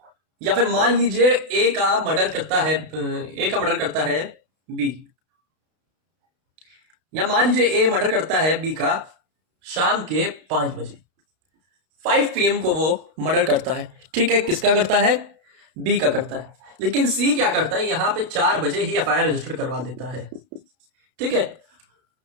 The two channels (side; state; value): left; late; 32 ms